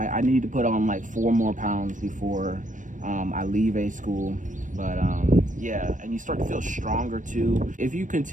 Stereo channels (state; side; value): late; left; 0.37 ms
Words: need to put on like 4 more pounds before I leave A school. But yeah, and you start to feel stronger too. If you